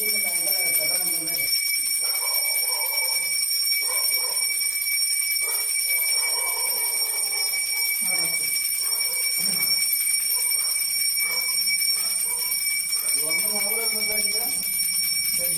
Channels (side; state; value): both; normal; correlation 0.94